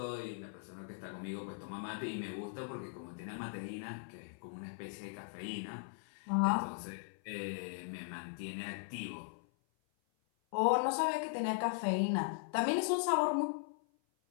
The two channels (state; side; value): silent; right; 52 dB below the other